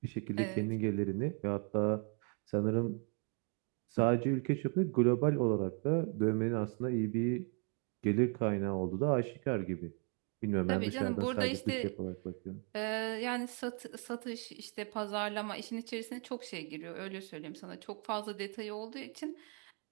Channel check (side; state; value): left; quieter; 37.3 dB